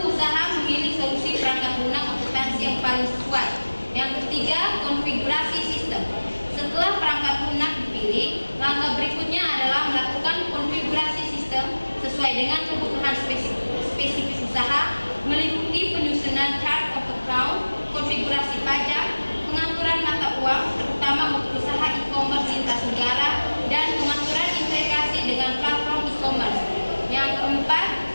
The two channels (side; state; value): both; inverted; correlation -1.00